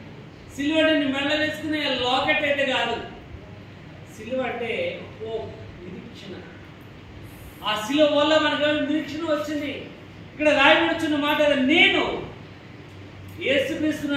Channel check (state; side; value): identical; both; correlation 1.00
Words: సిలువ అంటే నీ మెడలో వేసుకునే లాకెట్ అయితే కాదు. సిలువ అంటే హోప్, నిరీక్షణ. ఆ సిలువ వల్ల మనకు నిరీక్షణ వచ్చింది. ఇక్కడ రాయబడుచున్న మాట, నేను యేసుక్రీస్తును